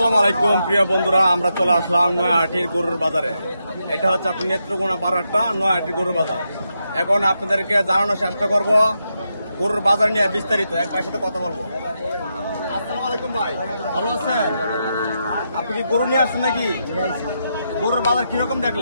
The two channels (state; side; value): inverted; both; correlation -0.84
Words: আলাইকুম প্রিয় বন্ধুরা, আমরা চলে আসলাম নয়াহাটির গরুর বাজারে। এটা হচ্ছে আপনার নেত্রকোনা পাড়াটা নয়াহাটির গরুর বাজার। এখন আপনাদেরকে জানানোর চেষ্টা করব গরুর বাজার নিয়ে বিস্তারিত। এক ভাইয়ের সাথে কথা বলবো। আসসালামু আলাইকুম ভাই, ভালো আছেন? আপনি কি গরু নিয়ে আসছেন নাকি? গরুর বাজার কিরকম